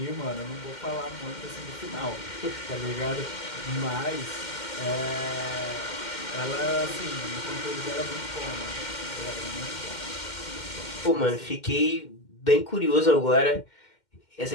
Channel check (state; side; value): late; right; 2.1 ms